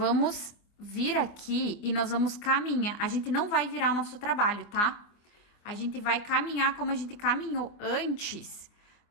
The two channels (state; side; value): late; right; 24 ms